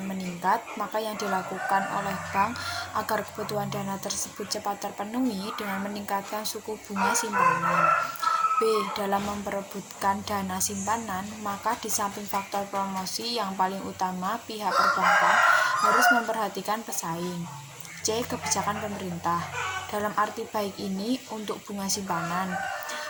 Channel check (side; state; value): both; identical; correlation 1.00